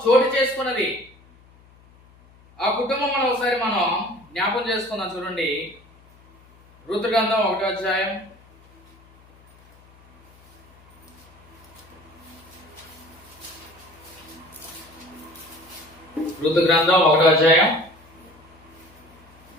చోటు చేసుకున్నది. ఆ కుటుంబం ఒకసారి మనం జ్ఞాపం చేసుకుందాం. చూడండి, రూతు గ్రంథం 1వ అధ్యాయం. రూతు గ్రంథం 1వ అధ్యాయం.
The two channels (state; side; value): noise; left; hum, 27 dB below the sound